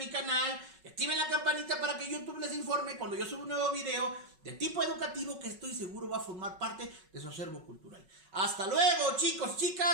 canal y activen la campanita para que YouTube les informe cuando yo suba un nuevo video de tipo educativo que estoy seguro va a formar parte de su acervo cultural. Hasta luego, chicos,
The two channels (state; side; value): late; left; 5.3 ms